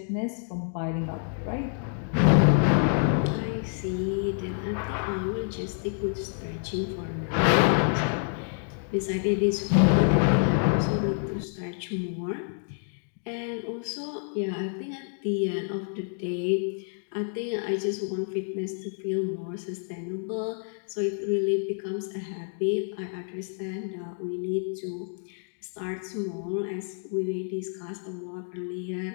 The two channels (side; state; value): right; silent; 59 dB below the other